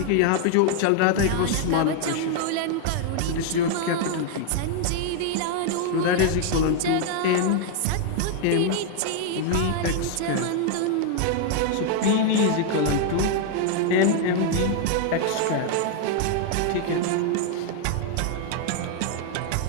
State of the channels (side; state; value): both; different; correlation 0.00